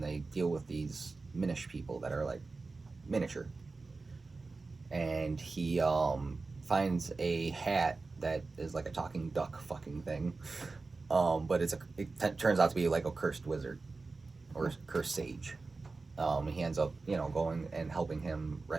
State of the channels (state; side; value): quieter; left; 3.8 dB